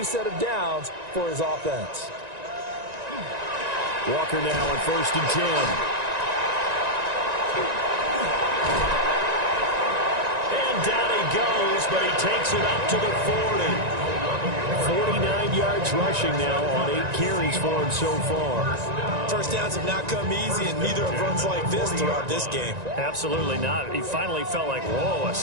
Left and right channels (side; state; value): left; late; 1.9 ms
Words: set of downs for his offense. Walker now on 1st and 10. Down he goes, but he takes it up to the 40. 49 yards rushing now on 8 carries for him so far. First downs have not come easy, and neither have runs like this throughout this game. Absolutely not. He finally felt like, whoa, a